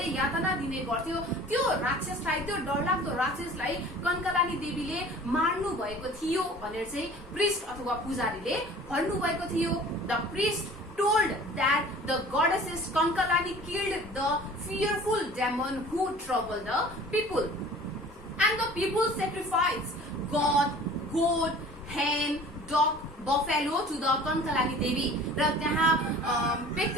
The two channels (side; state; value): both; normal; correlation 0.46